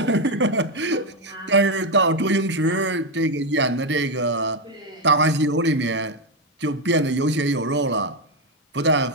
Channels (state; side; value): normal; both; correlation 0.06